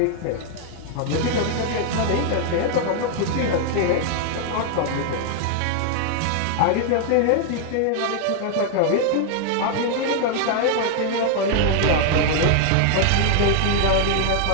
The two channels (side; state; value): both; different; correlation 0.00